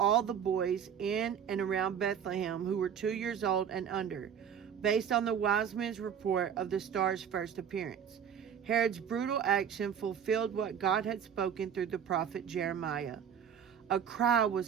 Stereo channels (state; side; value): quieter; left; 8.1 dB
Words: the boys in and around Bethlehem who were 2 years old and under, based on the wise men's report of the star's first appearance. Herod's brutal action fulfilled what God had spoken through the prophet Jeremiah. A cry